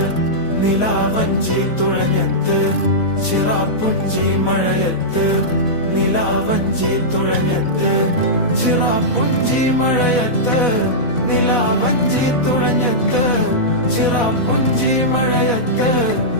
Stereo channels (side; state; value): right; late; 4.2 ms